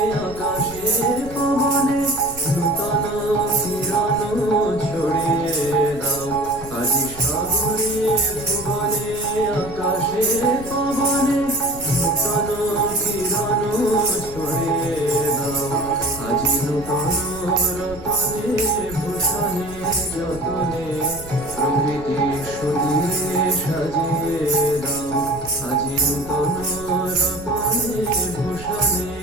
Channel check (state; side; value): noise; right; rumble, 16 dB below the sound